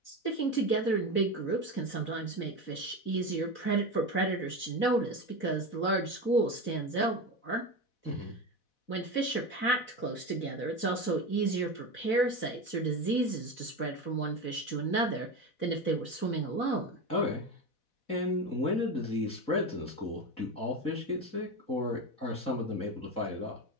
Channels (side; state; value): right; late; 4.1 ms